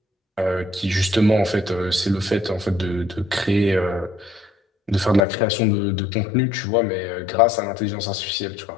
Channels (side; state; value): right; drops out; at 5.2 s